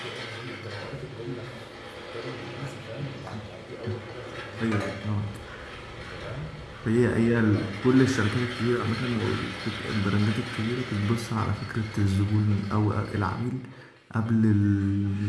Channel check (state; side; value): identical; both; correlation 1.00